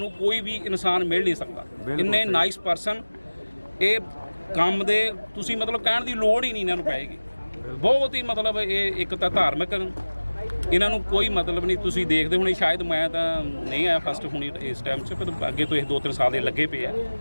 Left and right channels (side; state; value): both; inverted; correlation -1.00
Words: ਕੋਈ ਵੀ ਇਨਸਾਨ ਮਿਲ ਨਹੀਂ ਸਕਦਾ। ਇੰਨੇ ਨਾਈਸ ਪਰਸਨ, ਇਹ ਕੰਮ ਦੇ ਤੁਸੀਂ ਮਤਲਬ ਕਹਿਣ ਦੀ ਲੋੜ ਹੀ ਨਹੀਂ ਇਹਨਾਂ ਨੂੰ ਪਏਗੀ। ਬਹੁਤ ਹੀ ਮਤਲਬ ਇਹ ਇੱਕ ਤਾਂ ਧਾਰਮਿਕ, ਇਹਨਾਂ ਨੂੰ ਕੋਈ ਮਤਲਬ ਨਹੀਂ। ਤੁਸੀਂ ਦੇਖਦੇ ਹੋਣੇ, ਸ਼ਾਇਦ ਮੈਂ ਤਾਂ ਨਹੀਂ ਆਇਆ ਫਸਟ ਹੁਣੀ ਇਸ ਟਾਈਮ 'ਚ, ਪਰ ਅੱਗੇ ਤੋਂ ਇਹ 2-3 ਸਾਲ ਦੇ ਲੱਗੇ ਪਏ ਆ।